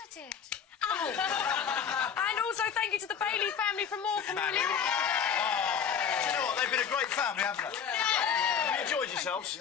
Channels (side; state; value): right; quieter; 7.4 dB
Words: I did. Oh. And also thank you to the Bailey family for more community. Do you know what? They've been a great family, haven't they? Have you enjoyed yourselves?